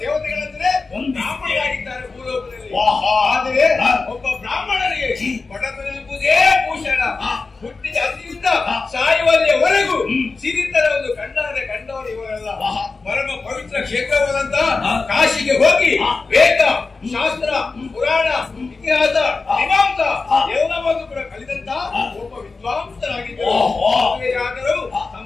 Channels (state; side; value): quieter; right; 4.0 dB